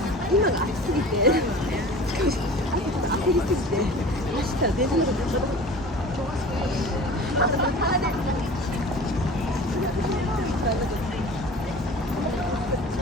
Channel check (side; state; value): both; normal; correlation 0.40